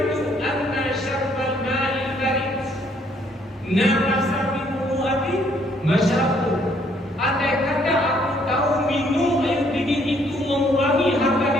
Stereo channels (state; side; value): normal; both; correlation 0.66